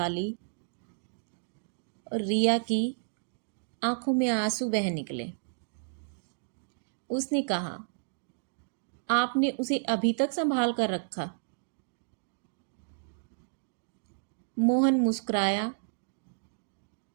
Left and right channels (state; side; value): silent; left; digital silence